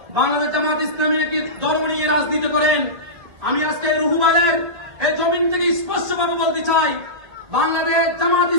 বাংলাদেশ জামাত ইসলামী একটি ধর্ম নিয়ে রাজনীতি করেন। আমি আজকে রুহুবাদের এই জমিন থেকে স্পষ্টভাবে বলতে চাই, বাংলাদেশ জামাত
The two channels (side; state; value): left; late; 2.1 ms